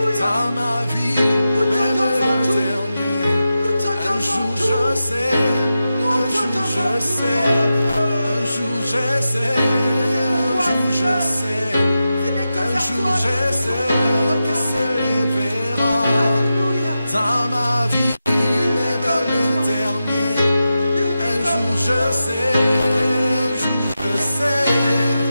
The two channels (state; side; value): inverted; both; correlation -0.91